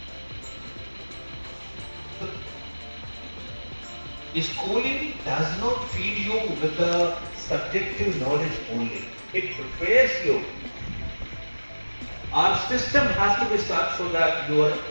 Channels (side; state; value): both; inverted; correlation -1.00